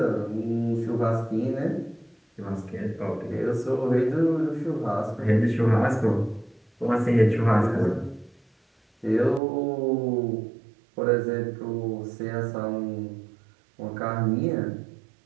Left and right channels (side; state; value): left; drops out; at 9.4 s